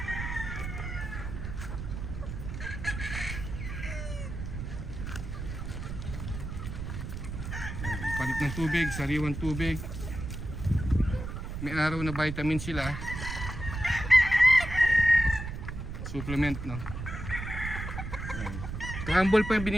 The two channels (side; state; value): right; noise; rumble, 6 dB below the sound